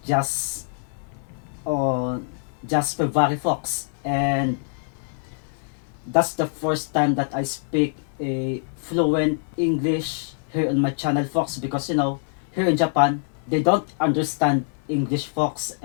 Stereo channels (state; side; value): silent; right; 56 dB below the other